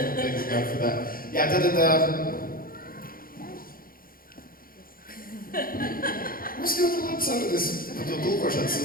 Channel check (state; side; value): late; right; 0.42 ms